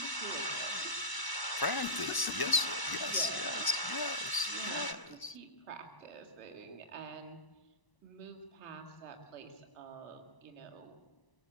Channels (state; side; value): late; right; 1.0 ms